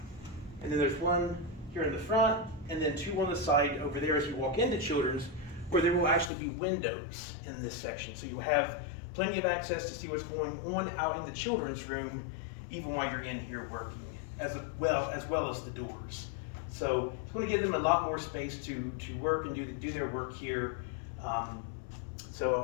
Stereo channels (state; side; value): drops out; right; at 6.3 s